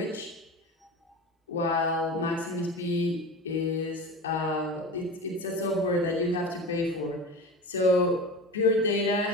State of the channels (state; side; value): normal; both; correlation 0.30